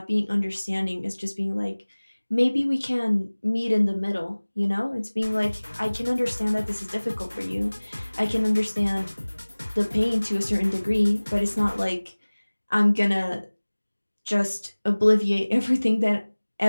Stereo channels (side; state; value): both; inverted; correlation -1.00